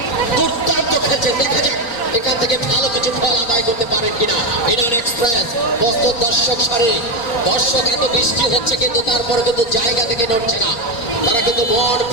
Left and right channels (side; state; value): right; late; 4.4 ms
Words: দুর্দান্ত খেলছে দেখা যাক এখান থেকে ভালো কিছু ফল আদায় করতে পারেন কিনা ইরান এক্সপ্রেস বস্তুর দর্শক এত বৃষ্টি হচ্ছে কিন্তু তারপরে কিন্তু জায়গা থেকে নড়ছে না তারা কিন্তু মন